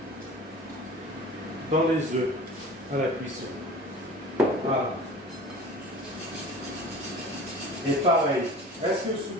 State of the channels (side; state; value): both; normal; correlation 0.40